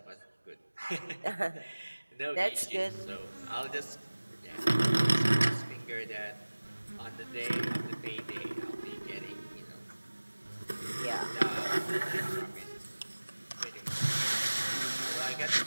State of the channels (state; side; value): inverted; both; correlation -1.00